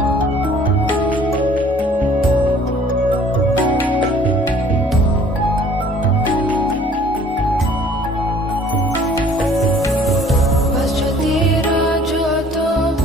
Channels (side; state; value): both; normal; correlation 0.55